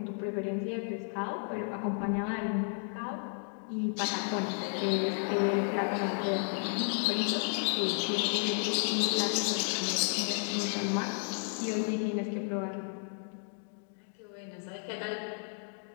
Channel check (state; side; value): silent; right; 56 dB below the other